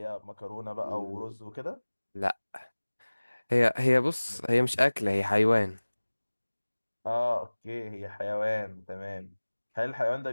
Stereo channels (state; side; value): inverted; both; correlation -1.00